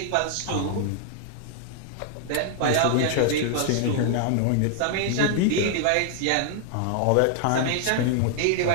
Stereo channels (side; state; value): both; different; correlation 0.00